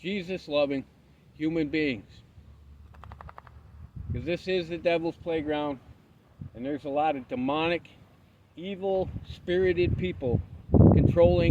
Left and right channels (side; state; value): both; identical; correlation 1.00